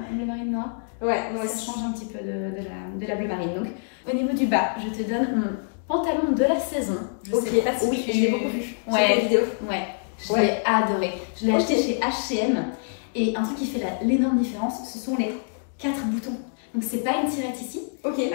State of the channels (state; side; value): silent; right; digital silence